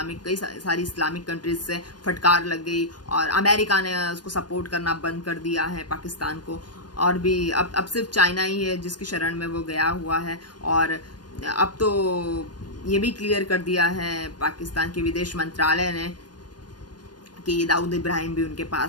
कई सारी इस्लामिक कंट्रीज से फटकार लग गई, और अमेरिका ने उसको सपोर्ट करना बंद कर दिया है पाकिस्तान को। और भी अब सिर्फ चाइना ही है जिसकी शरण में वो गया हुआ है। और अब तो ये भी क्लियर कर दिया है पाकिस्तान के विदेश मंत्रालय ने कि दाऊद इब्राहिम भी उनके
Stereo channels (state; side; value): late; right; 0.69 ms